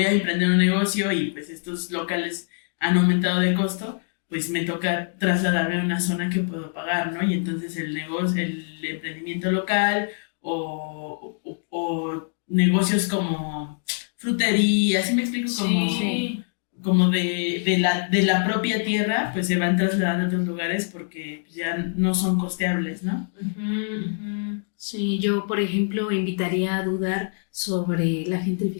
a emprender un negocio y pues estos locales han aumentado de costo, pues me toca trasladarme a una zona que puedo pagar, ¿no? Y entonces el emprendimiento local o negocios como frutería, ¿sí me explico? Como de la propia tierra, pues se van trasladando a otros lugares porque ya no son costeables, ¿no? Sí, yo, por ejemplo, invitaría a dudar sobre la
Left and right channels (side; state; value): right; silent; 62 dB below the other